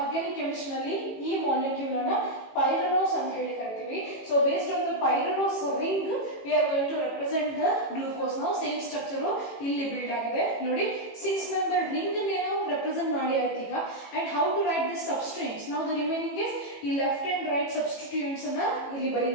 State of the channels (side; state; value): right; late; 18 ms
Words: ನಲ್ಲಿ ಈ molecule ಅನ್ನು pyranose ಅಂತ ಹೇಳಿ ಕರಿತೀವಿ. So based on the pyranose ring we are going to represent the glucose. Now same structure ಇಲ್ಲಿ build ಆಗಿದೆ ನೋಡಿ. 6 member ring ಅನ್ನು represent ಮಾಡಿ ಆಯ್ತು ಈಗ. And how to write this substituents? Now the remaining is ಈ left and right substituents ಅನ್ನು ಇಲ್ಲಿ